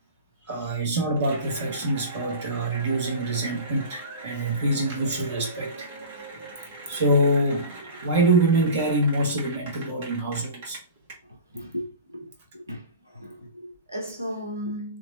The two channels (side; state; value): both; inverted; correlation -0.34